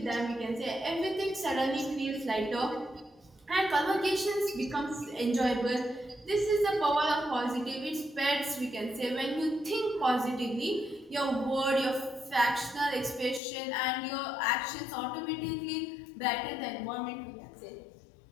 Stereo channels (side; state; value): right; drops out; at 13.4 s